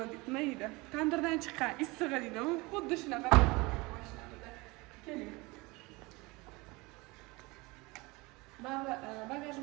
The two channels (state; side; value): quieter; left; 24.2 dB